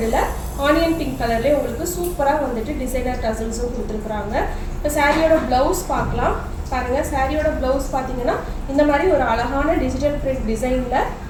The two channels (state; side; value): identical; both; correlation 1.00